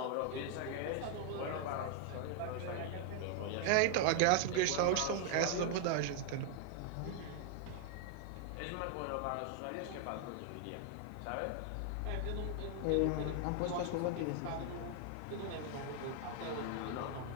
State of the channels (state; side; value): different; both; correlation 0.00